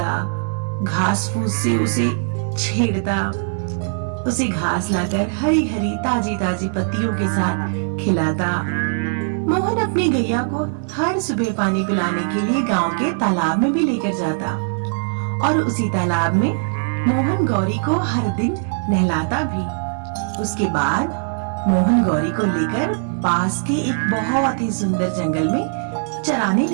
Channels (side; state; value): left; silent; digital silence